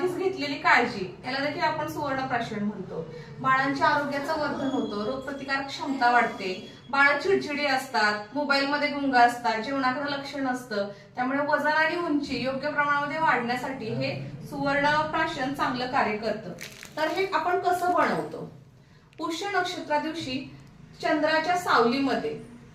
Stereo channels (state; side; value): identical; both; correlation 1.00